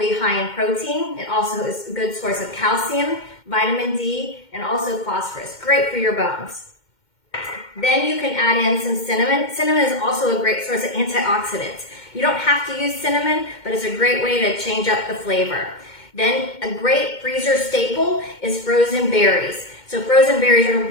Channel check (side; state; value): right; late; 2.1 ms